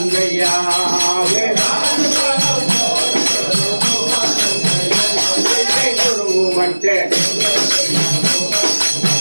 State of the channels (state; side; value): inverted; both; correlation -1.00